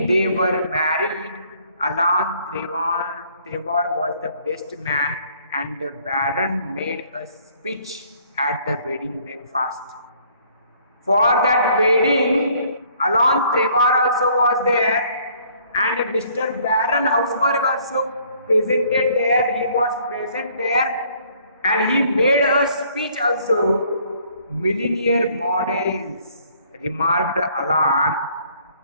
they were married, Alan Trevor was the best man, and the Baron made a speech at the wedding breakfast. For that wedding, Alan Trevor also was there, and Mr. Baron Hausberg also presented there. He was present there, and he made a speech also. Millionaire models, remarked Alan,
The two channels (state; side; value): inverted; both; correlation -0.61